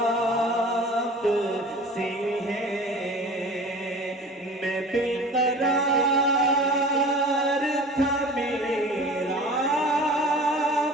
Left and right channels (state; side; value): normal; both; correlation 0.41